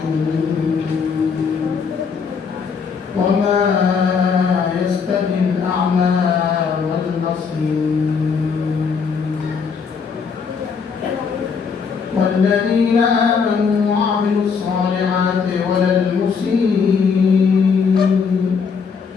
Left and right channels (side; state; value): right; quieter; 5.8 dB